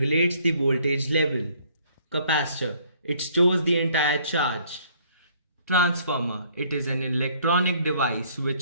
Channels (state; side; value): inverted; both; correlation -0.62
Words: the voltage level. Capacitor. It stores the entire charge. Transformer. It is an electronic device